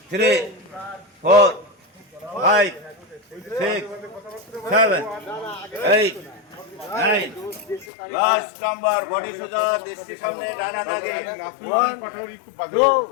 3, 4, 5, 6, 7, 8, 9. Last number, body soja, dishti samne, dana dage. 1,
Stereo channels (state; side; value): drops out; right; at 7.9 s